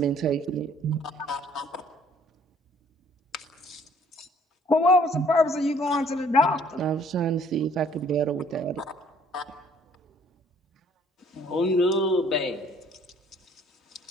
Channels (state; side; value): normal; both; correlation 0.59